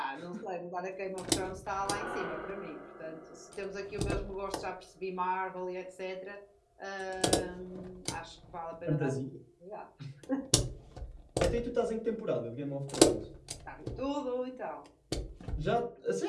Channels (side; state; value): both; identical; correlation 1.00